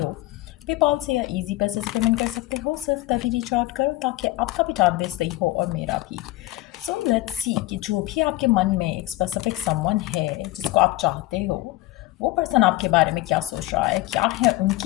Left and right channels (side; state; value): right; quieter; 17.9 dB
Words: पेपाल से या इजी पैसे से पेमेंट कर सकते हो, सिर्फ तभी रिच आउट करो ताकि आपका भी टाइम वेस्ट नहीं हो और मेरा भी। सो लेट्स सी कि जो भी आपके मन में एक स्पेसिफिक समवन है जिसको आप चाहते हो, वो पर्सन आपके बारे में क्या सोच रहा है, क्या है